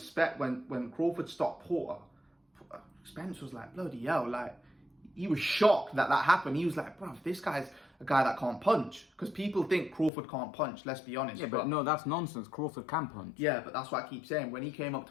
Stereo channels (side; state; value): right; drops out; at 10.1 s